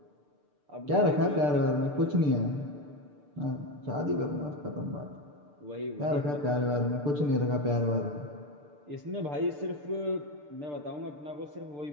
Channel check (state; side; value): late; left; 6.8 ms